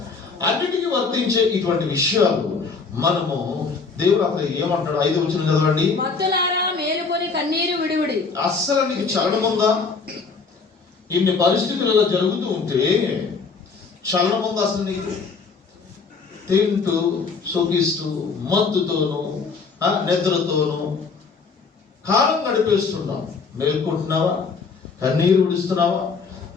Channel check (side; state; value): right; quieter; 4.8 dB